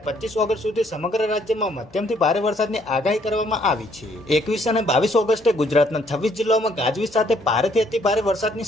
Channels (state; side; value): noise; left; hum, 27 dB below the sound